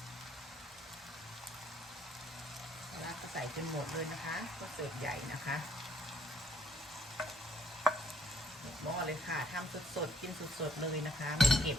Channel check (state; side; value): normal; both; correlation 0.67